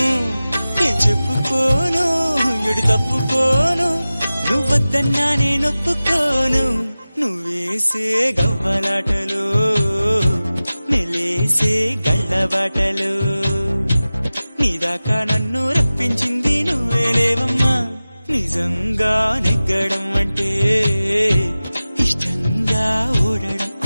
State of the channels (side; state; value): both; inverted; correlation -0.97